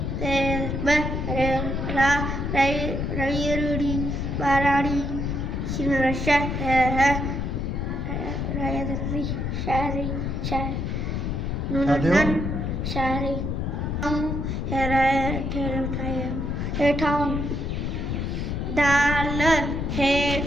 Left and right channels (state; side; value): noise; left; rumble, 1 dB below the sound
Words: ते रा रईरुड़ी बाराड़ी शिमरशा है रायदरी शारी शार नूनन शारी हम हेठाऊं दाल